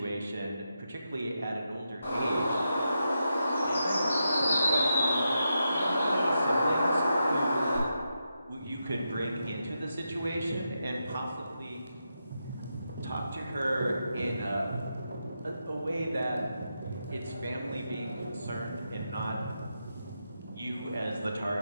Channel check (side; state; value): both; inverted; correlation -0.86